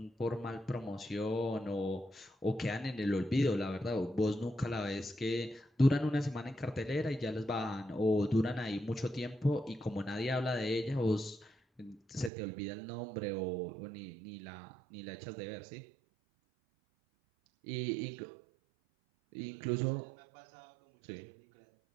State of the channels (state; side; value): drops out; left; at 12.3 s